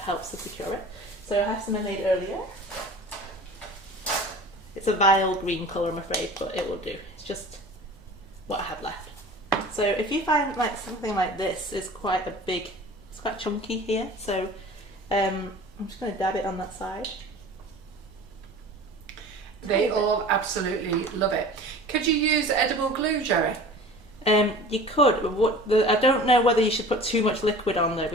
to secure it. So I have some I made earlier. It's a vile green colour, I'm afraid, but it will do. It's just what I have left. So if you find like something like this is quite a big, it's quite chunky here, so I'm just going to dab it on that side. They all absolutely love it. Could you use edible glue, Gerry? You could, but I don't know whether you should put too much liquid on though,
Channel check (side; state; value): both; normal; correlation 0.41